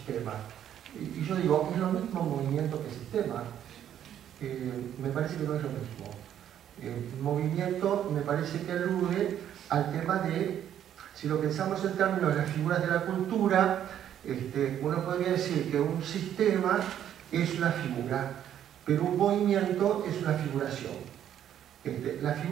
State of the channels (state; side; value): quieter; left; 10.3 dB